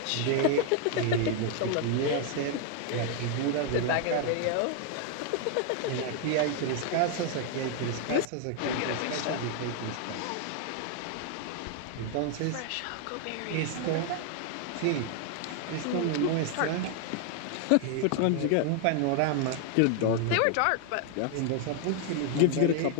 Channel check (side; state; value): both; different; correlation 0.00